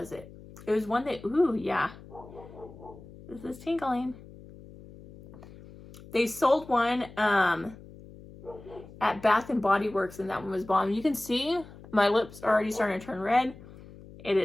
it? It was one that, ooh, yeah. This is tingling. They sold one at Bath and Body Works and that one was bomb. You can see my lips are already starting to turn red. It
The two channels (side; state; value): left; noise; hum, 18 dB below the sound